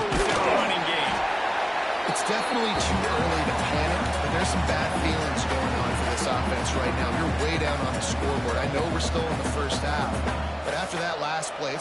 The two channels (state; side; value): identical; both; correlation 1.00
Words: their running game. It's definitely too early to panic, but there's some bad feelings going on for this offense right now. You're way down on the scoreboard. I know we're still in the first half, but after that last play,